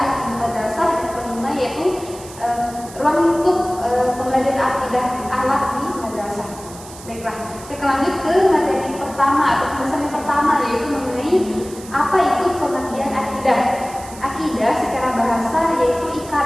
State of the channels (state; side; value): noise; right; hiss, 17 dB below the sound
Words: di madrasah, dan kelima yaitu ruang lingkup pembelajaran akidah akhlak di madrasah. Baiklah, saya lanjut ke materi pertama atau pembahasan yang pertama, yaitu mengenai apa itu pengertian akidah. Akidah secara bahasa yaitu